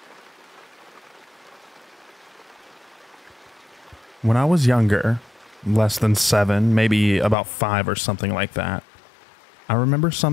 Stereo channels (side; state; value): right; drops out; at 7.4 s